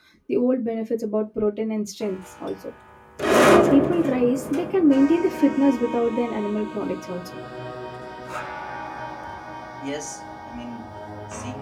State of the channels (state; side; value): identical; both; correlation 1.00